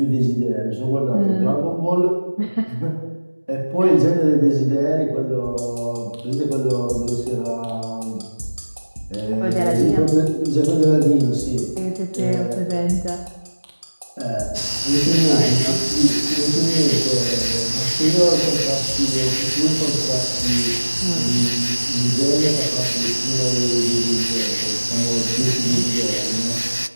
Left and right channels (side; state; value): both; inverted; correlation -1.00